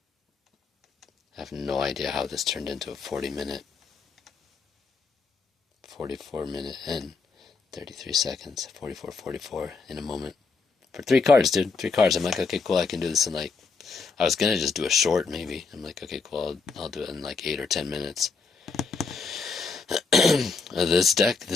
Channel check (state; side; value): quieter; right; 4.6 dB